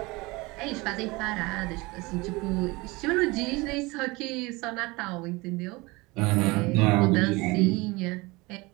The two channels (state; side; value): quieter; left; 23.5 dB